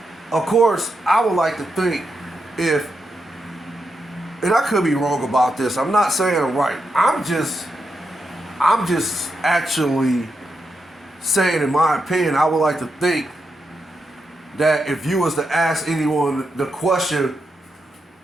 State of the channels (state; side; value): normal; both; correlation 0.85